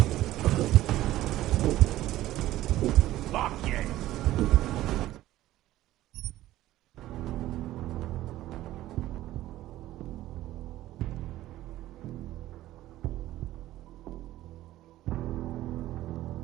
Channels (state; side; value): quieter; left; 15.1 dB